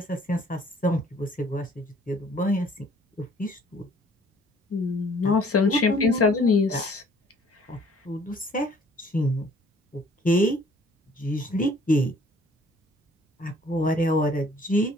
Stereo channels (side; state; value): both; normal; correlation 0.57